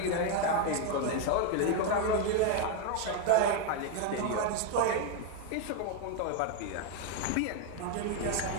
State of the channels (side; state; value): both; different; correlation 0.01